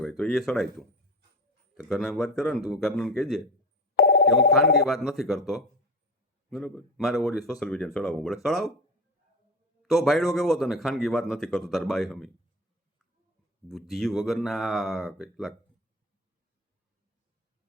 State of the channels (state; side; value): normal; both; correlation 0.28